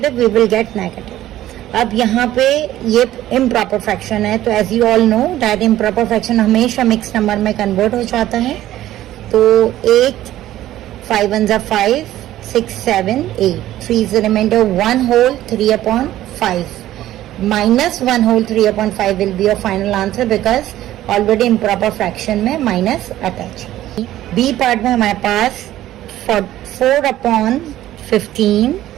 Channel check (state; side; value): quieter; left; 13.9 dB